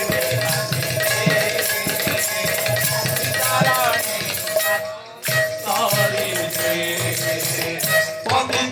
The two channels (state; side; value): identical; both; correlation 1.00